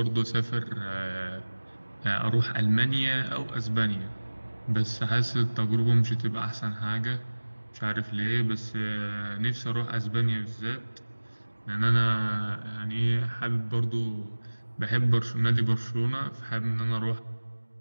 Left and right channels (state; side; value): inverted; both; correlation -1.00